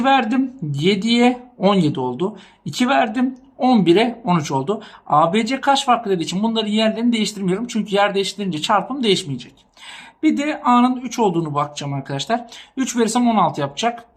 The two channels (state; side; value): identical; both; correlation 1.00